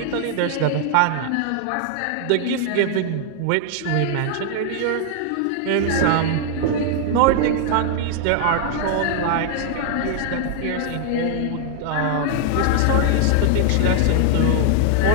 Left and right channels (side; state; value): both; different; correlation 0.00